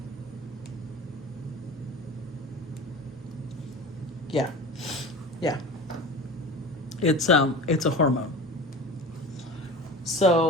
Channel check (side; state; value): both; normal; correlation 0.34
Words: Yeah. It's a hormone.